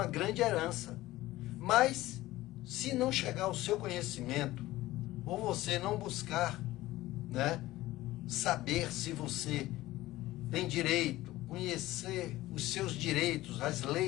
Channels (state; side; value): quieter; right; 16.9 dB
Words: grande herança, mas se não chegar ao seu conhecimento, ou você não buscar, né, saber se você tem direito, conhecer os seus direitos, as